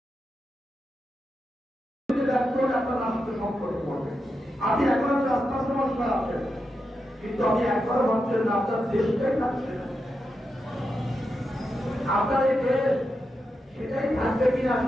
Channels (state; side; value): normal; both; correlation 0.87